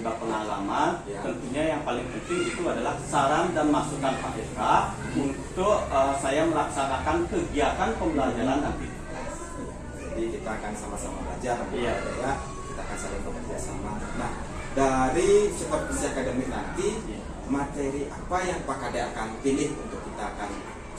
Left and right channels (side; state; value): both; identical; correlation 1.00